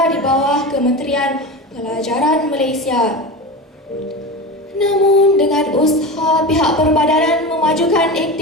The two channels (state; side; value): normal; both; correlation 0.26